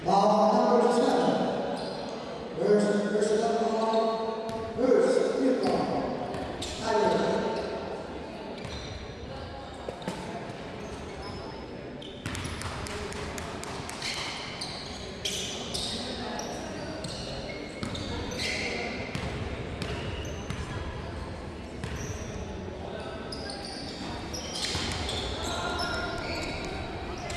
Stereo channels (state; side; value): identical; both; correlation 1.00